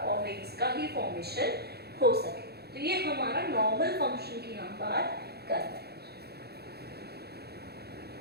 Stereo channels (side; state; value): left; late; 0.47 ms